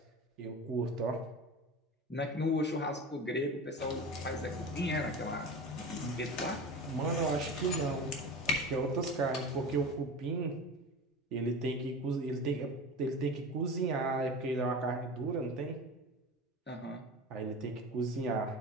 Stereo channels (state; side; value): normal; both; correlation 0.31